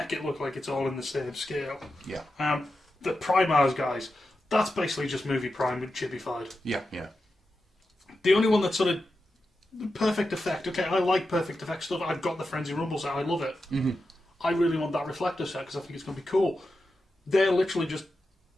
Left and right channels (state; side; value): normal; both; correlation 0.90